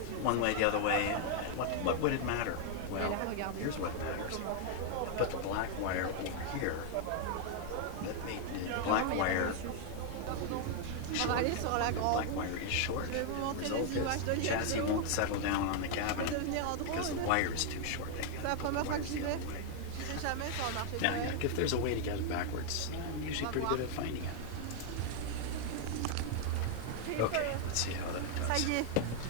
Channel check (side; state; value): both; different; correlation 0.00